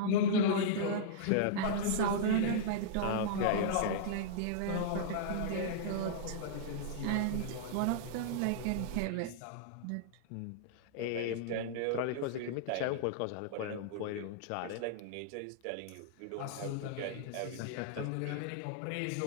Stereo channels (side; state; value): both; different; correlation -0.02